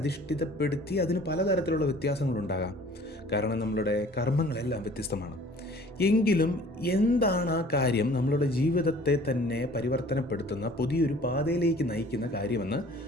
അതിന് പലതരത്തിലുള്ള വ്യത്യാസങ്ങളുണ്ടാകാം. കാരണം നമ്മളുടെ കർമ്മങ്ങളെല്ലാം വ്യത്യസ്തമാണ്. എങ്കിലും എന്താണ് ആ കാര്യം നമ്മളുടെ ജീവിതത്തെ തന്നെ പരിവർത്തനപ്പെടുത്തുന്ന പുതിയൊരു പാതയിലേക്ക് നയിക്കുന്ന കാര്യമെന്ന്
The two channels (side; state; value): both; normal; correlation 0.50